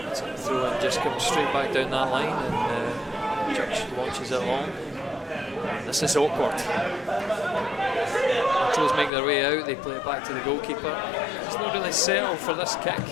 Throw in just comes straight back down that line, and Church launches it long. And this is awkward. Montrose make their way out, they play it back to the goalkeeper. He's not really settled for this kick.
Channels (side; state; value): right; drops out; at 9.1 s